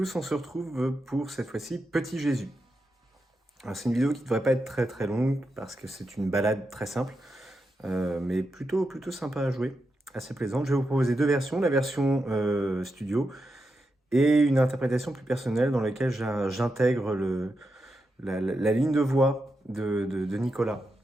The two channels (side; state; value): both; normal; correlation 0.87